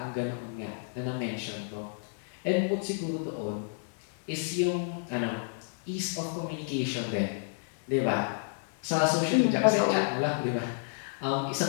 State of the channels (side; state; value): right; silent; digital silence